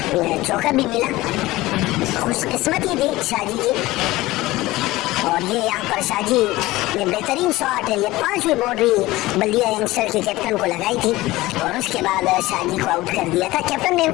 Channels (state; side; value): quieter; right; 18.6 dB